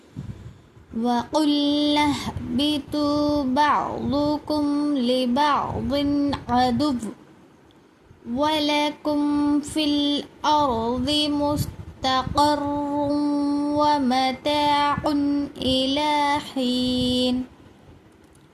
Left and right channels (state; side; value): identical; both; correlation 1.00